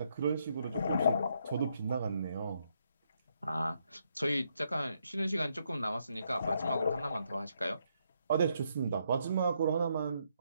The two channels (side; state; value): both; inverted; correlation -0.77